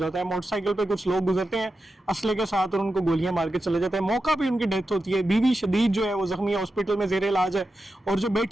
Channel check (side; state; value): both; normal; correlation 0.90